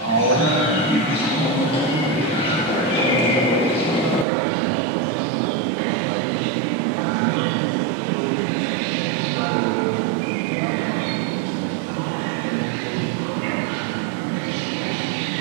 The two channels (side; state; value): left; drops out; at 4.2 s